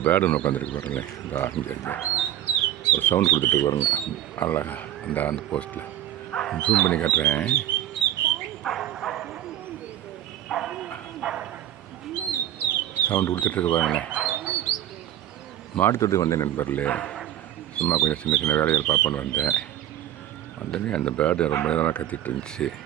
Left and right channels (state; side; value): quieter; left; 12.2 dB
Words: bird ஒன்று உட்காந்துருக்கு பாருங்களேன். இந்த இங்கே ஒரு சவுண்ட் கொடுத்துட்டு பாருங்க அழகா அந்த போஸ்ட்டில் ஜூம் பண்ணி காட்டுறேன். சவுண்டு கொடுத்துட்ருக்கு பாருங்களேன். மாடு தொட்டு வந்தேன் நண்பர்களே. சும்மா கொஞ்சம் சின்ன சின்ன வேலைகள் பார்ப்போன்னு வந்தோடனே அந்த பேர்டு ரொம்ப நேரமாக கத்திட்டு இருந்துச்சு.